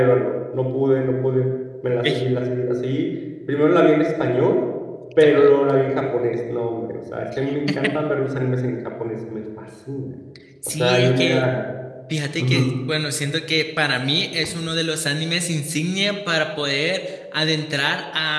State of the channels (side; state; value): both; identical; correlation 1.00